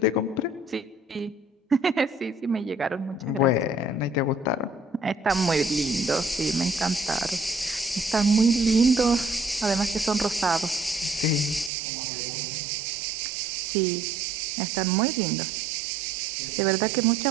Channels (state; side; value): drops out; left; at 11.7 s